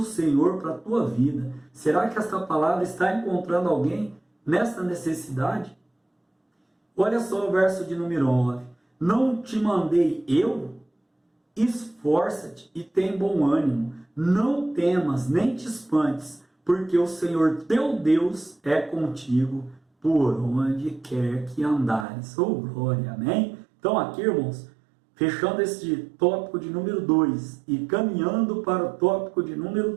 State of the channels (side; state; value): left; drops out; at 22.1 s